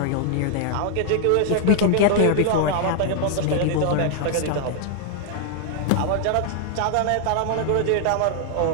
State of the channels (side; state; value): both; different; correlation 0.00